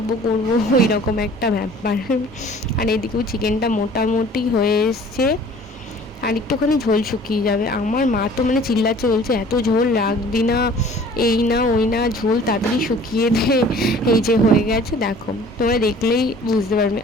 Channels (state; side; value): normal; both; correlation 0.49